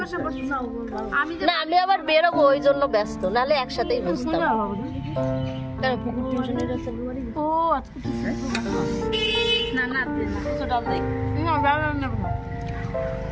না আমি আবার বেরোবো, ওই জন্য ব্যস্ত, নাহলে একসাথেই বসতাম।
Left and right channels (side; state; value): both; identical; correlation 1.00